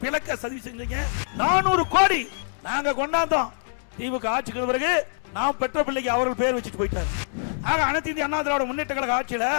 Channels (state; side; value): silent; right; digital silence